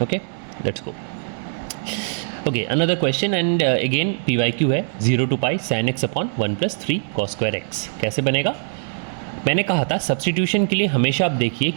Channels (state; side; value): silent; left; digital silence